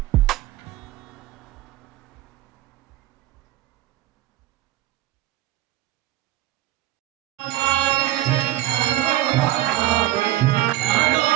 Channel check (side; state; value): left; quieter; 15.2 dB